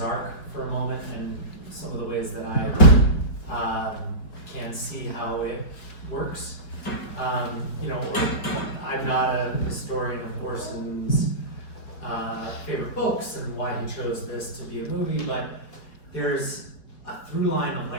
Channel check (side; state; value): right; late; 4.7 ms